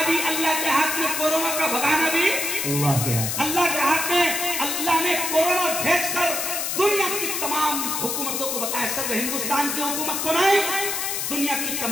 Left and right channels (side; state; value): left; noise; hiss, 1 dB below the sound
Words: بھی اللہ کے ہاتھ میں، کورونا کا بھگانا بھی اللہ کے ہاتھ میں. اللہ نے کورونا بھیج کر دنیا کی تمام حکومتوں کو بتایا، صرف ہندوستان کی حکومت کو نہیں، دنیا کی